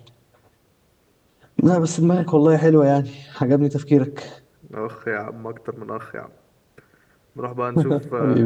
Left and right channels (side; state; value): both; identical; correlation 1.00